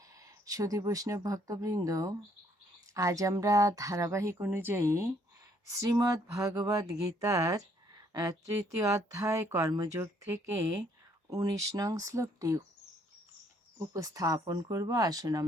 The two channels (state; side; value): normal; both; correlation 0.66